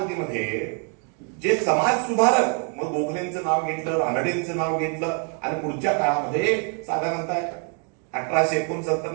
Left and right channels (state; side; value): quieter; left; 39.5 dB